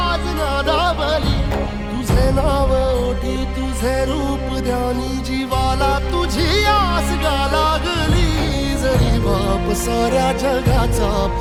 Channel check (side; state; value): both; identical; correlation 1.00